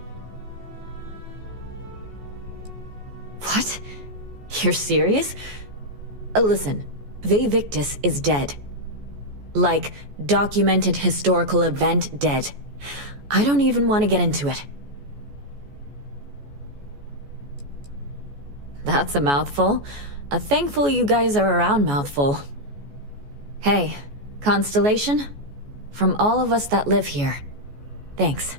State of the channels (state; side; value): late; left; 14 ms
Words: What? You're serious? Listen, Vivictus is dead. Like, documented historical event dead. I don't even want to get into it. That's a mouthful. A thankful you guys are around mouthful. Hey, Constellation? From all of us that live here, thanks.